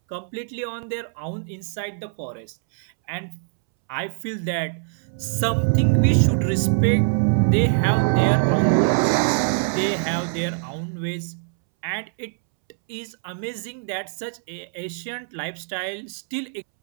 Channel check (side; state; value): left; silent; 63 dB below the other